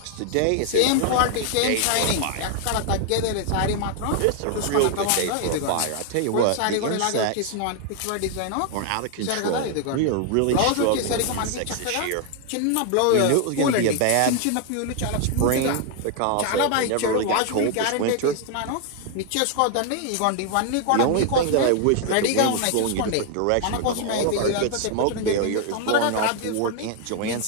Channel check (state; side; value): different; both; correlation 0.00